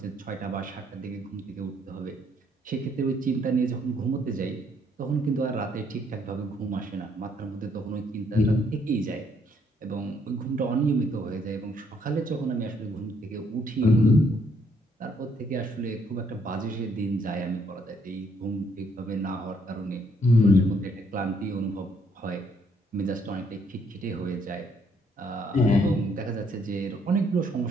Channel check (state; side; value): normal; both; correlation 0.69